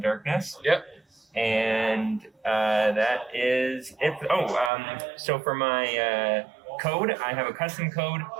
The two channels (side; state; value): left; drops out; at 4.7 s